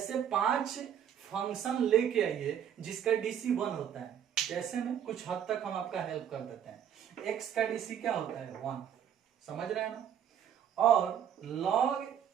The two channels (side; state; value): left; quieter; 9.2 dB